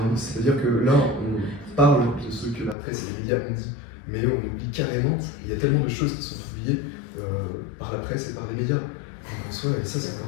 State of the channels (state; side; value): drops out; right; at 2.8 s